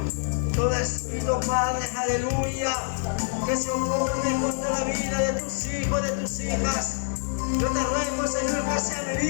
todo espíritu, Padre, aleluya, que se opone contra la vida de tus hijos, de tus hijas. Yo te ruego, Señor, que sean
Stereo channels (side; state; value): right; silent; digital silence